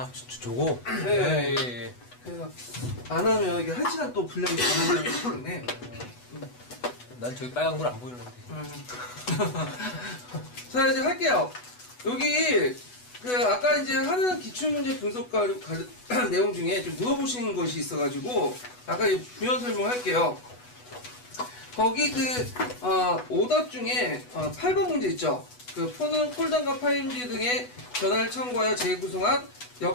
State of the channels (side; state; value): right; late; 8.1 ms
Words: 저거? 네. 예. 그래서, 안 하면 이게 1시간 또 분량이 가능하기 때문에. 난 저기 빨간 걸 안 보이는데. 자, 이제 할게요. 여기, 아까 이제 하는 기출문제 분석 내용 중에 좀 물어보시는 것이 있어가지고, 아까 이제 부연 설명할게요. 거기 오답 중에, 8번 문제 있죠? 폰은 폴더과 파일지 등의 전화를 참고하여 재구성한